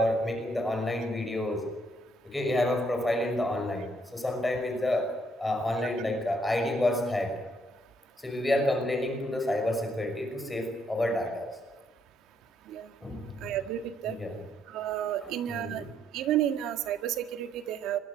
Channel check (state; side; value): normal; both; correlation 0.71